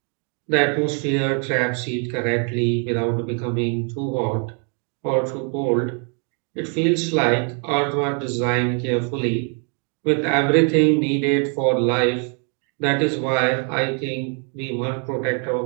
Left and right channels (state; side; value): quieter; left; 39.9 dB